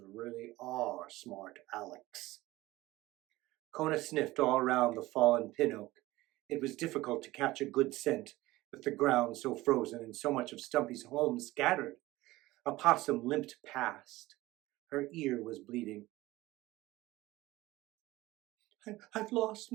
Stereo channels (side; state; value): left; quieter; 18.4 dB